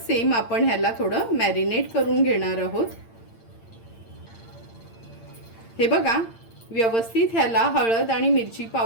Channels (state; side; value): late; right; 8.8 ms